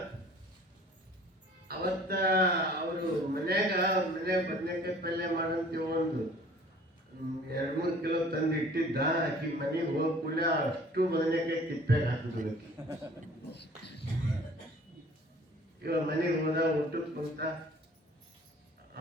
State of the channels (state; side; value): normal; both; correlation 0.51